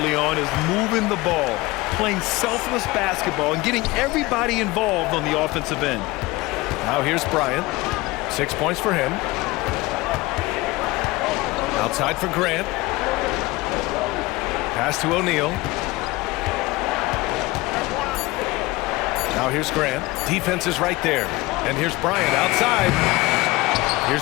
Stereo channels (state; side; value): quieter; right; 21.1 dB